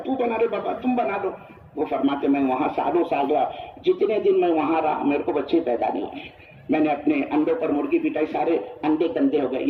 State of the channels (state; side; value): identical; both; correlation 1.00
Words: بنا دے بابا، تم بنا دو۔ وہ فرماتے میں وہاں سالوں سال رہا، جتنے دن میں وہاں رہا میرے کو بچے پیدا نہیں ہوئے، میں نے اپنے انڈوں پر مرغی پٹائی، سارے انڈے گندے ہو گئے،